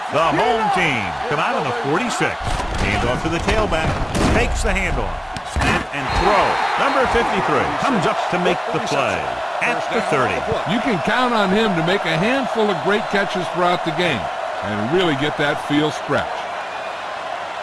The home team come out on the 46. Hand off to the tailback. Takes the handoff. Snap and throw. Number 53 comes up to make the play at the 30. You can count on him to make a handful of great catches throughout the game and really get that field stretch.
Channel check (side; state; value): both; identical; correlation 1.00